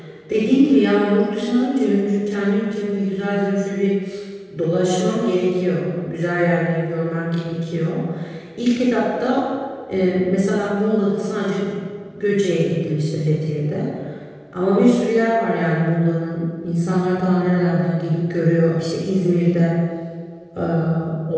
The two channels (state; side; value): identical; both; correlation 1.00